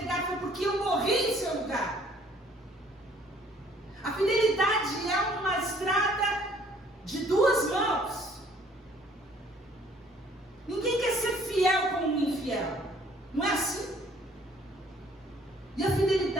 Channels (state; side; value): normal; both; correlation 0.59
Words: foi porque eu morri em seu lugar. A fidelidade é uma estrada de duas mãos. Ninguém quer ser fiel com um infiel. Não é assim? E a